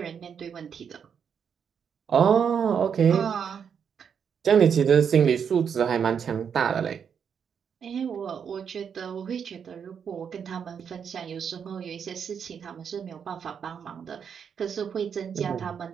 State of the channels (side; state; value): left; quieter; 7.3 dB